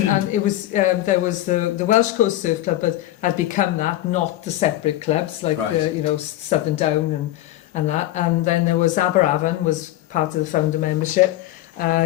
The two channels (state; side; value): quieter; right; 14.7 dB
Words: it was there was the Welsh Coast Surf Club, but had become that, not the separate clubs like Right. the, you know, Southern Down and that, and then there was Aberavon was part of the founder membership,